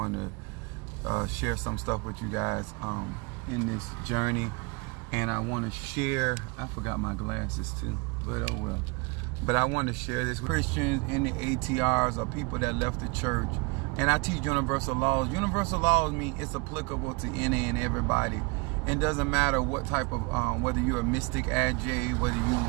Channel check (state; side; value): quieter; left; 28.7 dB